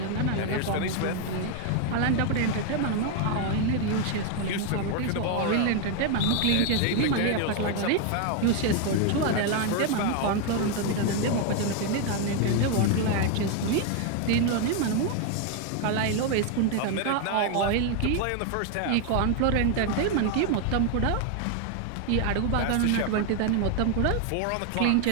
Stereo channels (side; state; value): both; different; correlation 0.01